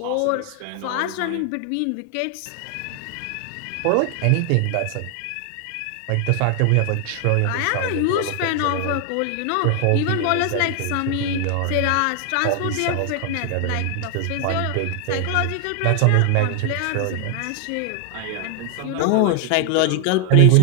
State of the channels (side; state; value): both; different; correlation 0.00